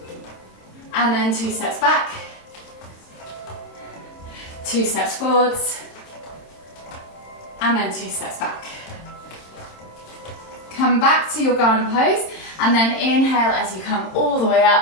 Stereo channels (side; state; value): right; late; 26 ms